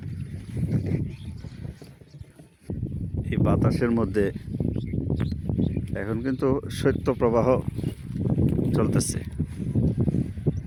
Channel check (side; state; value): both; identical; correlation 1.00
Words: এই বাতাসের মধ্যে এখন কিন্তু শৈত্যপ্রবাহ চলতেছে।